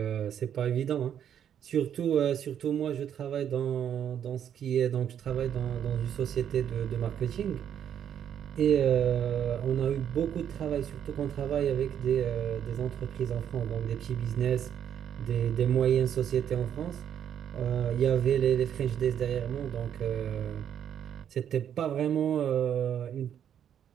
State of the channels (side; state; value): left; quieter; 9.2 dB